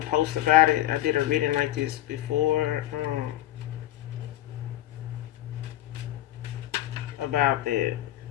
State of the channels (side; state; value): right; quieter; 14.0 dB